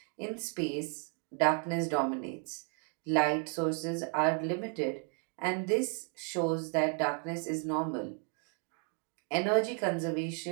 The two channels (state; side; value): quieter; left; 39.0 dB